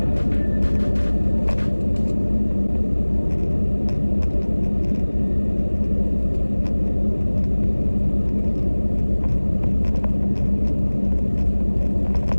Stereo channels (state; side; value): inverted; both; correlation -1.00